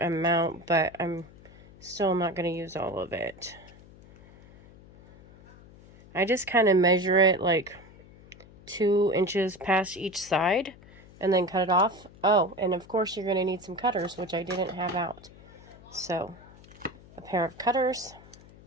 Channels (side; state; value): left; noise; hum, 22 dB below the sound